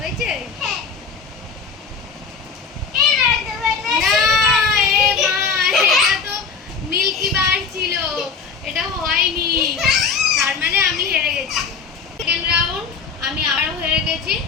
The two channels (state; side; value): quieter; right; 5.4 dB